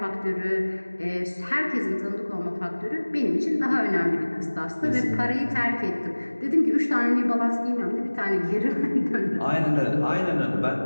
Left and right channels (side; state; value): both; inverted; correlation -1.00